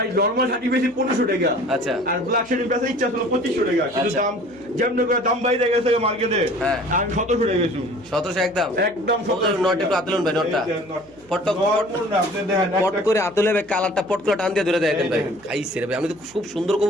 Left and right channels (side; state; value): right; noise; hum, 28 dB below the sound